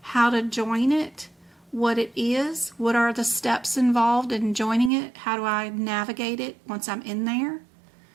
how to join it, what it is, what are the steps involved in joining it, how do I navigate it once I'm in there.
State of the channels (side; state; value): left; drops out; at 4.9 s